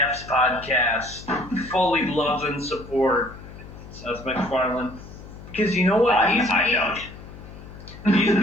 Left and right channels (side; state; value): left; noise; hum, 16 dB below the sound